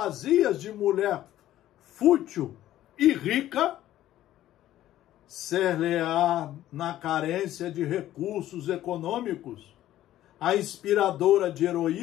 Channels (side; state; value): right; quieter; 13.4 dB